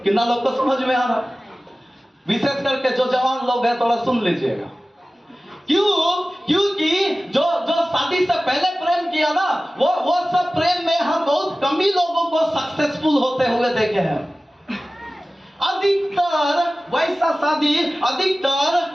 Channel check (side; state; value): both; normal; correlation 0.96